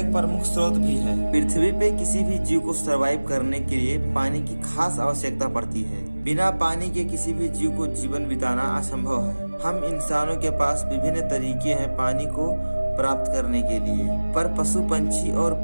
प्रमुख स्रोत भी है। पृथ्वी पे किसी भी जीव को सरवाइव करने के लिए पानी की खास आवश्यकता पड़ती है। बिना पानी के किसी भी जीव को जीवन बिताना असंभव है। हम इंसानों के पास विभिन्न तरीके हैं पानी को प्राप्त करने के लिए, पर पशु पंछी और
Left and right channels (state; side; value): inverted; both; correlation -1.00